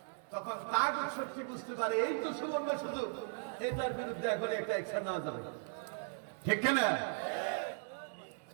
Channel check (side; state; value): left; silent; digital silence